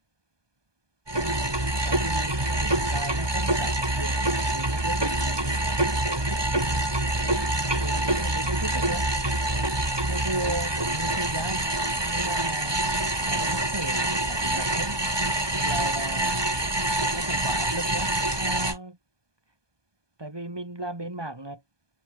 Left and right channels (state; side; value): late; left; 1.2 ms